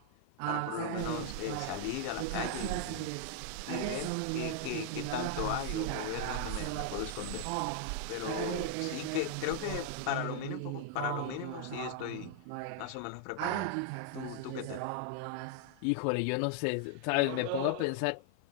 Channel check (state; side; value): different; both; correlation 0.00